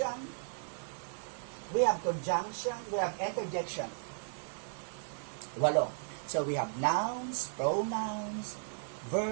we have conjunction, we have interjection. 8. So we have nouns, pronouns,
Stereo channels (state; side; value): silent; left; digital silence